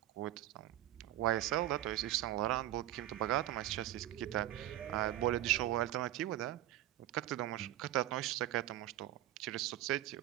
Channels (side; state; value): left; quieter; 14.2 dB